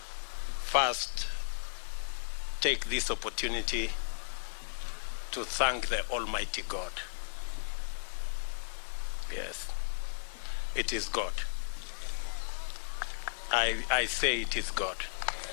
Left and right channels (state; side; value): silent; right; 55 dB below the other